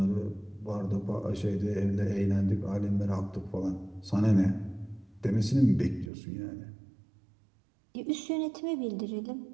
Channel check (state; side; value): drops out; left; at 6.1 s